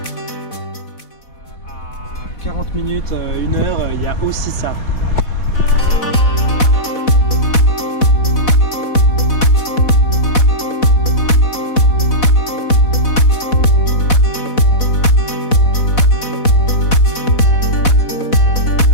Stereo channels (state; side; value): late; right; 4.1 ms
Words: À 40 minutes, 1 heure, il y a aussi ça.